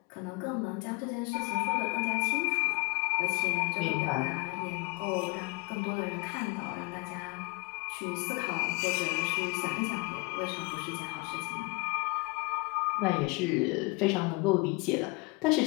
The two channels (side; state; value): right; quieter; 27.4 dB